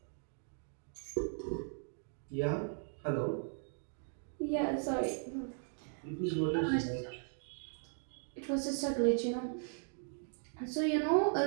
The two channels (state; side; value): silent; left; 53 dB below the other